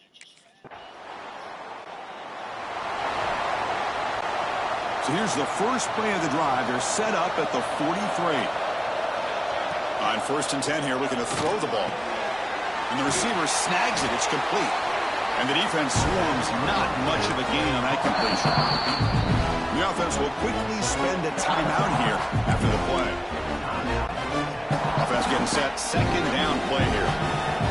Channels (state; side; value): identical; both; correlation 1.00